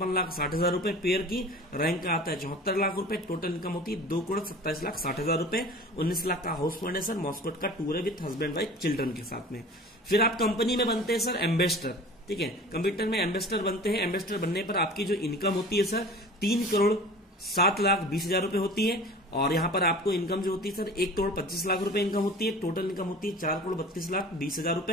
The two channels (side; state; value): both; normal; correlation 0.41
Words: रुपए पेयर की। रैंक का आता है 74 लाख रुपए। टोटल इनकम होती है 2,27,60,000 रुपए। 19 लाख का हाउस फंड है सर। मॉस्कोट का टूर है विद हस्बैंड वाइफ चिल्ड्रन के साथ में। फिर आप कंपनी में बनते हैं सर एम्बेसडर, ठीक है। कंप्यूटर में एम्बेसडर बनते हैं। एम्बेसडर बनने पर आपकी जो इनकम होती है सर 3,07,20,000 रुपए होती है। और यहाँ पर आपको इनकम जो होती है सर 1,25,00,000 रुपए इनकम होती है। टोटल इनकम होती है 4,32,20,000